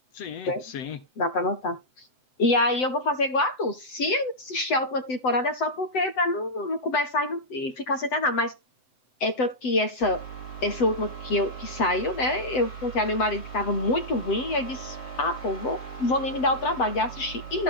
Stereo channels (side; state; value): right; late; 7.9 ms